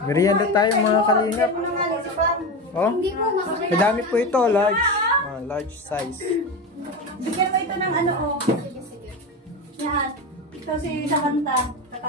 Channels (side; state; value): both; normal; correlation 0.21